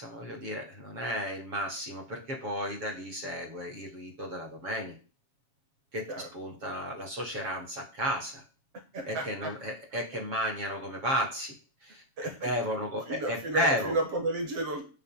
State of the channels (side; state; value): left; late; 7.2 ms